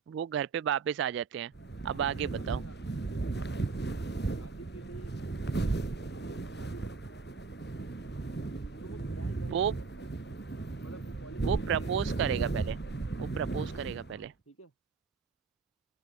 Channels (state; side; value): quieter; left; 5.0 dB